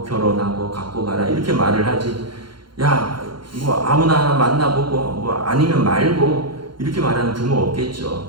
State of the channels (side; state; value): left; late; 0.72 ms